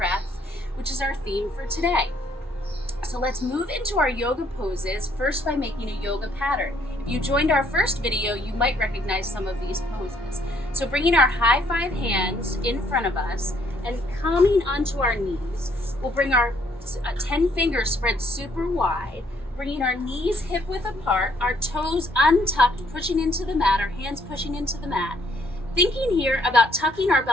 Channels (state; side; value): normal; both; correlation 0.67